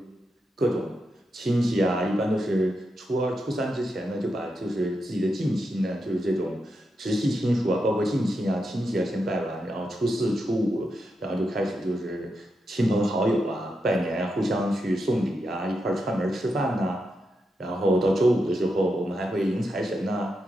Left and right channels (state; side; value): normal; both; correlation 0.85